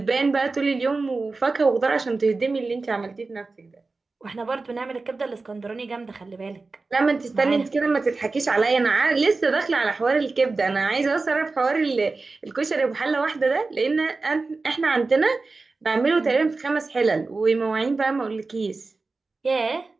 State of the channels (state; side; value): quieter; left; 3.8 dB